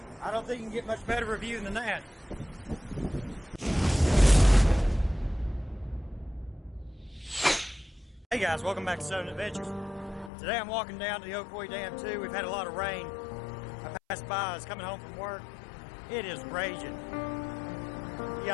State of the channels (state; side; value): drops out; right; at 10.3 s